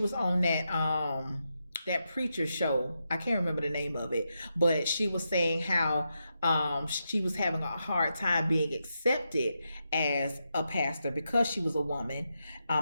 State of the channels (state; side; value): inverted; both; correlation -0.85